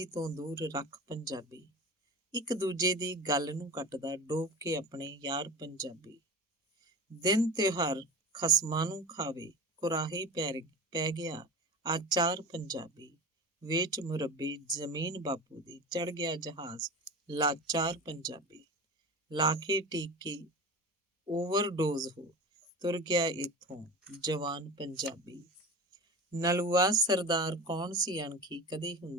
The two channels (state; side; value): normal; both; correlation 0.31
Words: ਤੋਂ ਦੂਰ ਰੱਖ ਪੰਜਾਬੀ। ਇੱਕ ਦੂਜੇ ਦੀ ਗੱਲ ਨੂੰ ਕੱਟਦਾ, ਡੋਬ ਕੇ ਆਪਣੇ ਯਾਰ ਪੰਜਾਬੀ। ਦਿਨ ਤਿਉਹਾਰ ਖਸਮਾਂ ਨੂੰ ਖਾਵੇ, ਕੁਰਾਹੇ ਪੈ ਗਿਆ ਆਚਾਰ ਪੰਜਾਬੀ। ਵੇਚ ਮੁਰੱਬੇ ਜ਼ਮੀਨ ਬਾਪੂ ਦੀ, ਚੜ ਗਿਆ ਜਹਾਜ਼ ਲਾਚਾਰ ਪੰਜਾਬੀ। ਲਾ ਕੇ ਟੀਕੇ ਓਵਰਡੋਜ਼ ਹੋ, ਤੁਰ ਗਿਆ ਇੱਥੋਂ ਜਵਾਨ ਪੰਜਾਬੀ। ਨਲੂਆ ਸਰਦਾਰ ਕੌਣ ਸੀ ਅਣਖੀ, ਕਦੇ